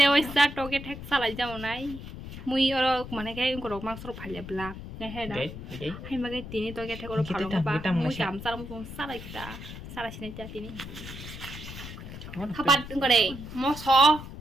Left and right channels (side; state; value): left; noise; rumble, 11 dB below the sound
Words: sa to cái thách sa lại ra này. Mui ở mà này cái có mang số phải là bla. Cái hay đó. Hay mà cái tin to cái thách có phản nó ba. Mui cảm sa nó xuống sa lại kita. Sa lại xin cha tin. Kapan có đây? Mo so.